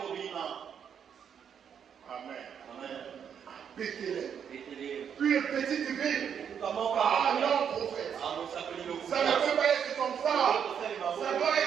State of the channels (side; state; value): left; quieter; 7.9 dB